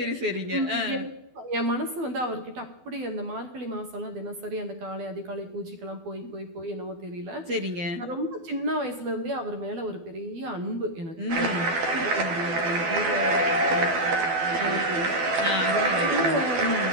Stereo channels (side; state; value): left; late; 12 ms